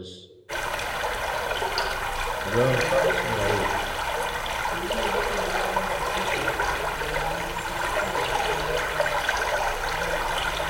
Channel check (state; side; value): identical; both; correlation 1.00